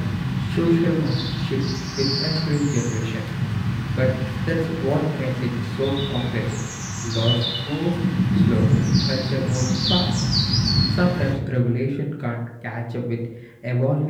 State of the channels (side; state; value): both; identical; correlation 1.00